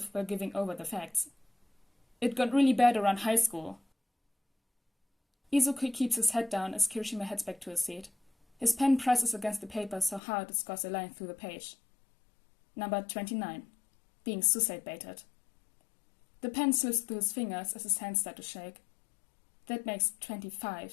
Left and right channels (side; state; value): right; drops out; at 10.2 s